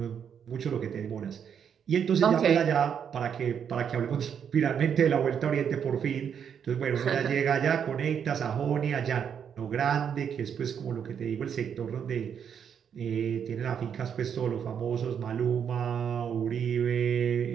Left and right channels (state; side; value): quieter; left; 7.9 dB